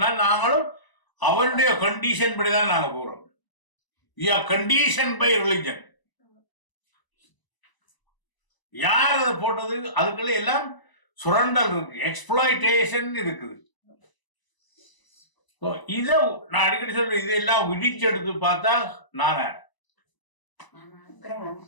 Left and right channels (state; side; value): late; right; 1.0 ms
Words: நாங்களும் அவனுடைய கண்டிஷன் படிதான் நாங்க போறோம். Condition by religion. யார் அதை போட்டது? அதுக்குள்ள எல்லாம் சுரண்டல் இருக்கு, எக்ஸ்ப்ளாய்டேஷன் இருக்குது. இத நான் அடிக்கடி சொல்றேன், இதெல்லாம் விடிச்சு எடுத்து பார்த்தா நானே